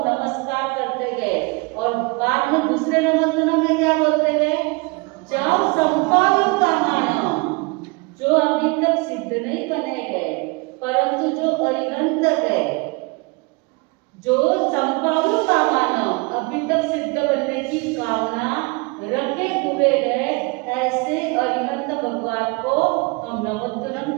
नमस्कार करते गए। और बाद में दूसरे नमोतुनम में क्या बोलते गए? जाओ संपादन का मानव, जो अभी तक सिद्ध नहीं बने गए परंतु जो अरिहंत है, जो संपादन का मानव अभी तक सिद्ध बनने की कामना रखे हुए हैं, ऐसे अरिहंत भगवान को हम नमोतुनम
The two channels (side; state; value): left; quieter; 28.3 dB